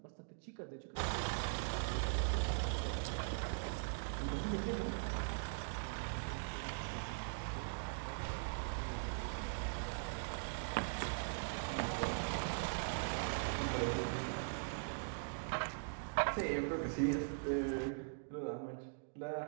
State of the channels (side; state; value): left; silent; digital silence